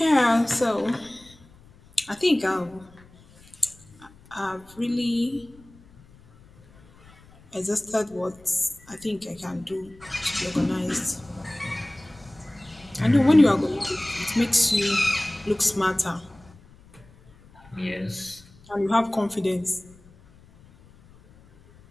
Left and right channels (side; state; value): left; noise; rumble, 26 dB below the sound